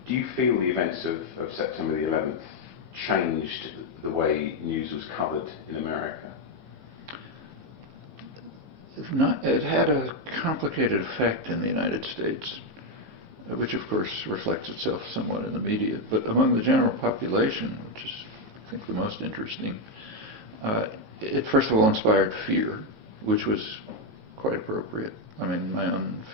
you feel the events of September the 11th changed the way news was covered in America? It had a complicated effect in the United States, which of course reflects itself somewhat in the media. But among the general population, which is, I think, the most interesting, it first of all inspired fear, which was quite appropriate. I mean, my own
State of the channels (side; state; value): left; late; 15 ms